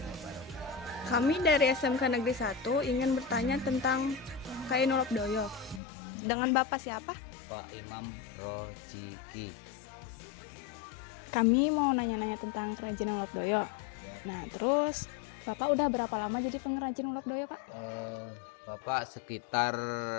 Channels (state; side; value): drops out; right; at 5.8 s